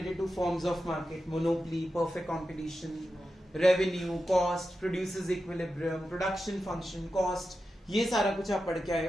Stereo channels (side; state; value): both; normal; correlation 0.91